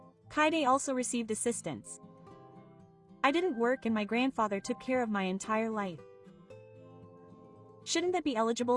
Kaide also received assistance. I didn't work and my grandfather took care of my entire life. Shouldn't that be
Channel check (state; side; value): identical; both; correlation 1.00